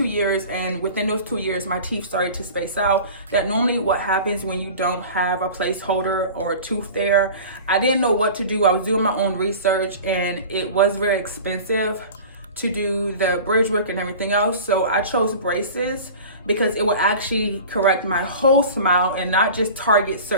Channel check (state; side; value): inverted; both; correlation -0.38